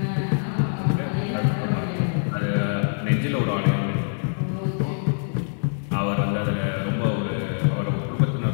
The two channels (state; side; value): silent; right; digital silence